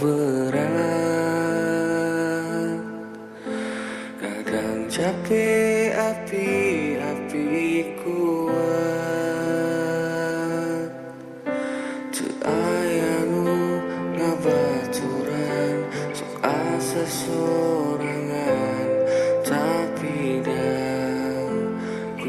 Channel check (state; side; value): identical; both; correlation 1.00